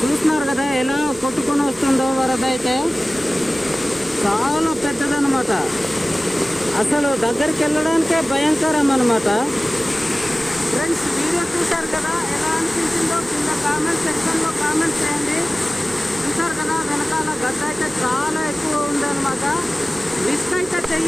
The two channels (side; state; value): both; normal; correlation 0.97